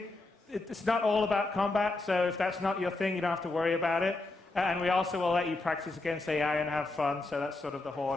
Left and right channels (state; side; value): quieter; right; 3.1 dB